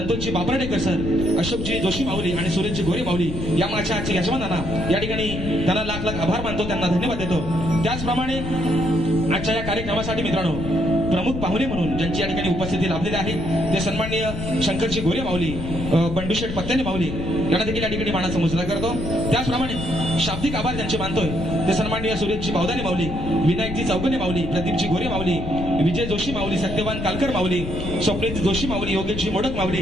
बापराडेकर सर, अशोकजी जोशी माऊली आणि सुरेशजी गोरे माऊली या माझ्या आजच्या यजमानांना या ठिकाणी त्यांना लाख लाख आभार मानतो, त्यांना धन्यवाद देतो. त्याचप्रमाणे आजच्या या कार्यक्रमासाठी मित्रांनो प्रमुख पाहुणे म्हणून ज्यांची या ठिकाणी उपस्थिती लाभलेली आहे ते सन्माननीय शंकरजी गोरे माऊली, बंडूशेठ पत्त्याने माऊली यांना देखील या ठिकाणी मानाचा मुजरा करतो. त्याचप्रमाणे शाब्दिक आभार ज्यांचे मानतोय ते सन्माननीय सुरेशजी बावदाने माऊली, विनायकजी चौगने माऊली, प्रदीपजी गोरे माऊली, विजय जोशी माऊली, सत्यवान कालकर माऊली, स्वप्नील जोशी माऊली, योगेशजी मोडक माऊली,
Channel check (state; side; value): noise; left; rumble, 6 dB below the sound